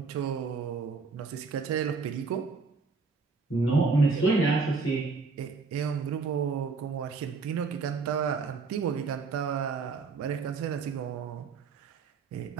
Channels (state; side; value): quieter; left; 4.5 dB